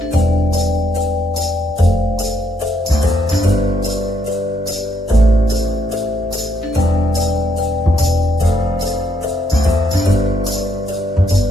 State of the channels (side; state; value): both; normal; correlation 0.74